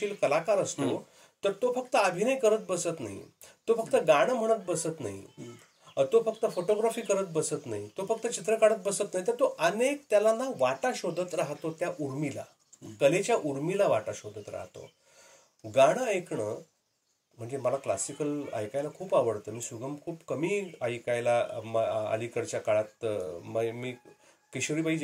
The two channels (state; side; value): identical; both; correlation 1.00